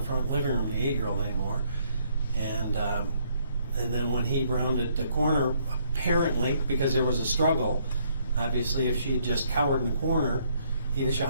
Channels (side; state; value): both; inverted; correlation -0.68